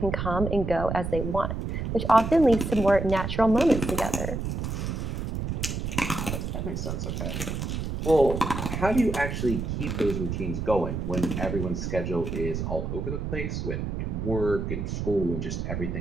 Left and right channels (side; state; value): right; noise; rumble, 3 dB below the sound